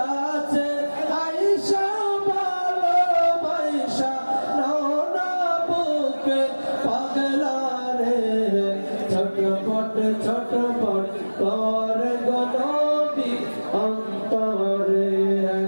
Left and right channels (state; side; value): inverted; both; correlation -1.00